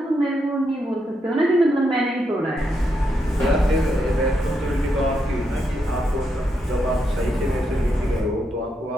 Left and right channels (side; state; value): both; normal; correlation 0.81